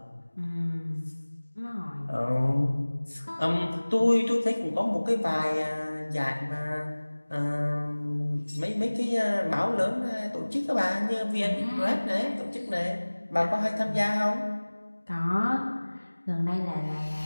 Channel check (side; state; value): both; inverted; correlation -1.00